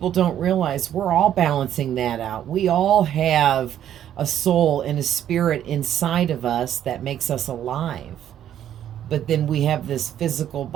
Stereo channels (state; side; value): quieter; left; 10.7 dB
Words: don't realize we're all balancing that out. We all have a soul and a spirit inside of us that makes us alive. But then we have this physical